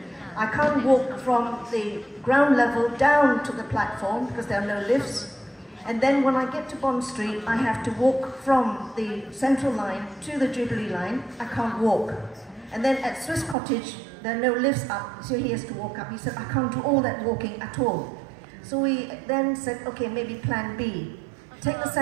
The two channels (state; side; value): drops out; left; at 13.6 s